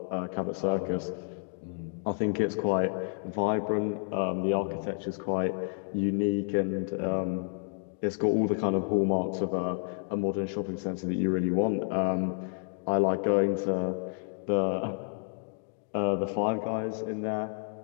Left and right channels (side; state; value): right; silent; 58 dB below the other